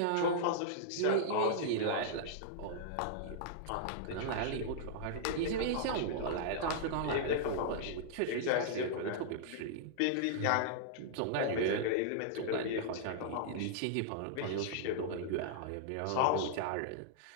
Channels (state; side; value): different; both; correlation -0.02